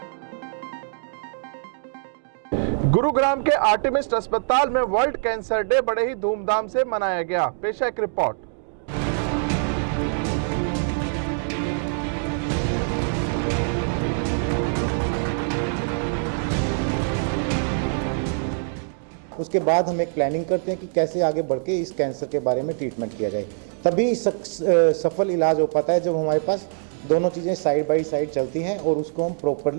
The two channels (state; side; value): silent; left; digital silence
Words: गुरुग्राम के आर्टेमिस अस्पताल में वर्ल्ड कैंसर डे बड़े ही धूमधाम से मनाया गया। पेश है एक रिपोर्ट। उसके बाद हम एक प्लानिंग करते हैं कि कैसे आगे बढ़ के इस कैंसर के बारे में ट्रीटमेंट किया जाए। तभी सफल इलाज हो पाता है जब हमारे पास दोनों चीज़ें साइड बाय साइड चलती हैं और उसको हम